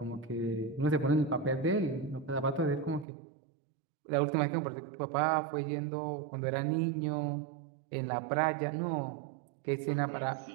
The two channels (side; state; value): left; drops out; at 3.1 s